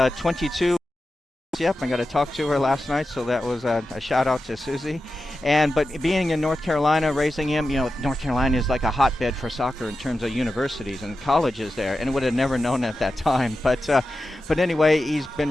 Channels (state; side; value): normal; both; correlation 0.92